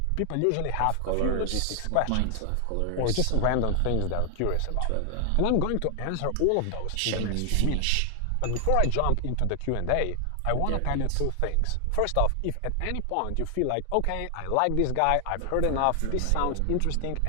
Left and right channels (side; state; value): both; different; correlation 0.00